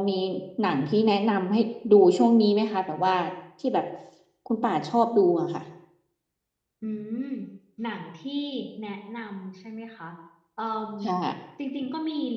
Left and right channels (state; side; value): identical; both; correlation 1.00